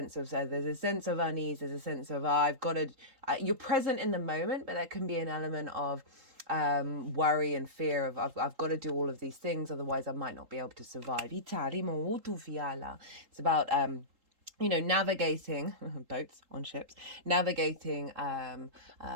of unease, there's a sense of I've got to. You're present in the moment, but there can be an element of worry and fear of I've got to do all of these things, otherwise I might not be able to survive. It's about navigating boats on ships, navigating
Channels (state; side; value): late; left; 3.8 ms